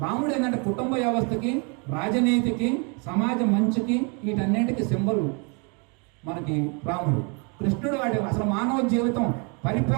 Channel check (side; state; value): left; quieter; 34.7 dB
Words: రాముడు ఏంటంటే కుటుంబ వ్యవస్థకి, రాజనీతికి, సమాజ మంచికి, వీటన్నింటికి సింబల్ మనకి రాముడు. కృష్ణుడు వాటి అసలు మానవ జీవితం